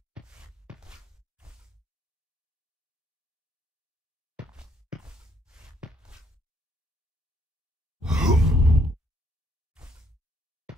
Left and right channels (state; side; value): normal; both; correlation 0.68